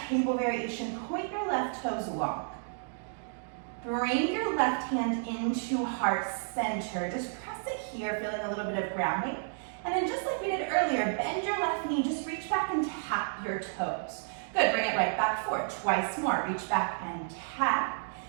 table variation, point your left toes long. Bring your left hand into heart center. Just press it here, feeling a little bit of grounding. And then just like we did earlier, bend your left knee, just reach back and tap your toes. Good, bring it right back forward. Twice more, reach back and tap.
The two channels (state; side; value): silent; left; digital silence